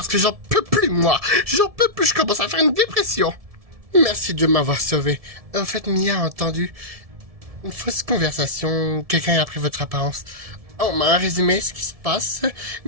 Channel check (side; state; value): left; late; 1.7 ms